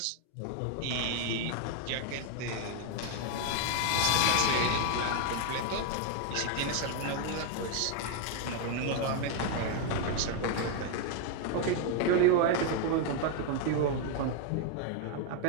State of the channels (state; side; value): different; both; correlation 0.00